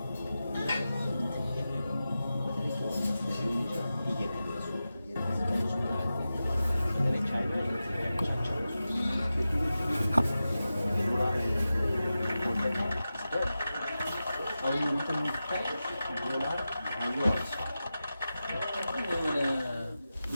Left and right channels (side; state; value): both; inverted; correlation -0.93